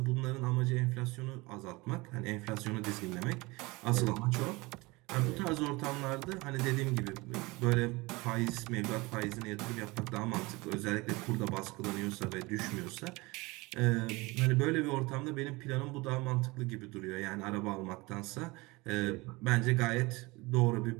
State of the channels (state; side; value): quieter; left; 23.6 dB